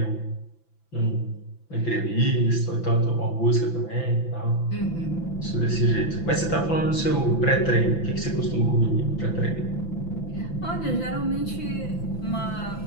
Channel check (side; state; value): right; late; 5.9 ms